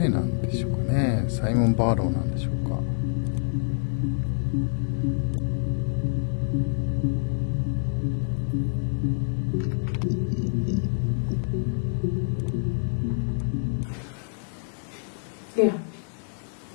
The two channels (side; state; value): right; silent; 61 dB below the other